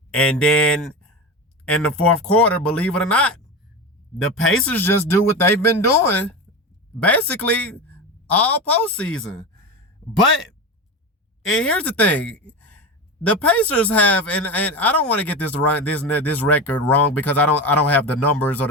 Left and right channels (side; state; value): both; normal; correlation 0.23